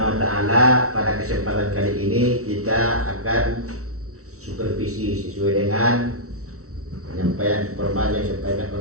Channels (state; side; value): late; left; 0.64 ms